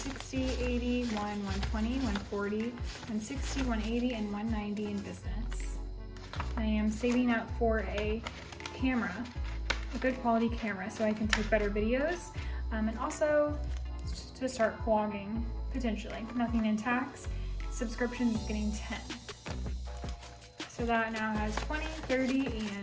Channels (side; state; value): both; identical; correlation 1.00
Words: 80, 1, 120, 140, 160, 180, and 190 in business. I am saving up for a camera, a good quality camera, so I can take better videos, and also to start vlogging, potentially. Nothing in tax. Subscriptions is getting 10. So that now has 20, 30,